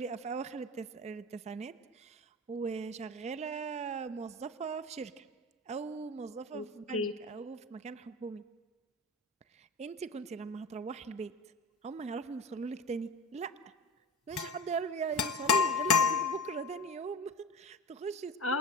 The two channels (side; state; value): both; normal; correlation 0.32